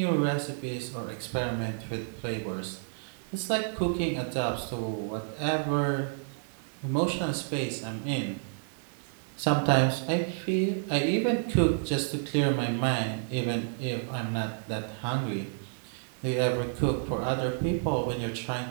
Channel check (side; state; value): left; silent; digital silence